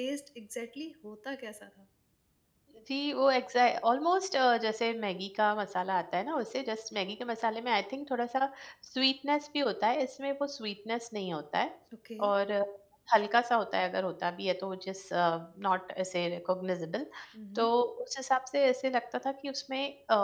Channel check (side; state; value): both; identical; correlation 1.00